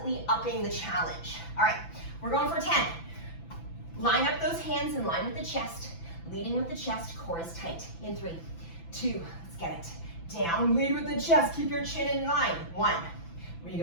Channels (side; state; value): right; late; 6.0 ms